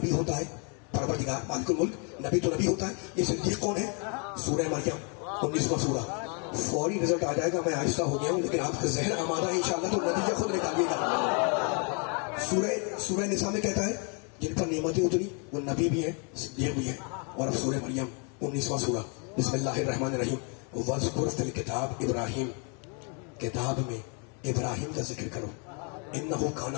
ہوتا ہے, پروردگار مالک الملک نبی تو نبی ہوتا ہے. یہ صدیق کون ہے؟ سورہ مریم 19واں سورہ. فوری رزلٹ آ جائے گا, میں آہستہ ہو گیا ہوں لیکن آپ کا ذہن آمادہ ہے انشاءاللہ, تو نتیجہ خود نکالیے گا. سورہ نساء میں کہتا ہے جن پر نعمتیں اتری وہ نبی بھی ہے, صدیق بھی ہے. اور اب سورہ مریم 19واں سورہ, بسم اللہ الرحمن الرحیم, وَاذْكُرْ فِي الْكِتَابِ ابراہیم, کتاب میں ابراہیم کا ذکر کرو, اِنَّهُ كَانَ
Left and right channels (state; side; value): quieter; right; 36.9 dB